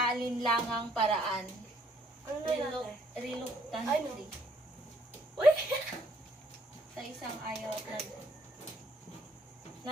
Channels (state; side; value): normal; both; correlation 0.66